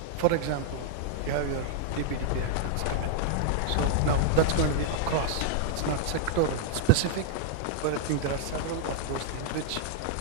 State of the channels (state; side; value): different; both; correlation -0.01